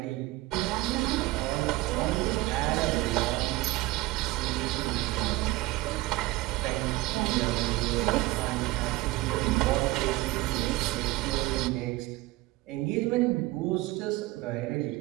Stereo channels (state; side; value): quieter; left; 18.8 dB